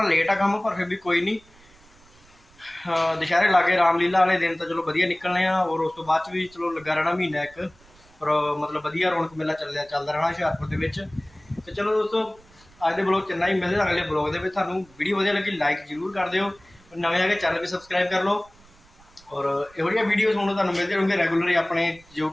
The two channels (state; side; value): noise; right; rumble, 28 dB below the sound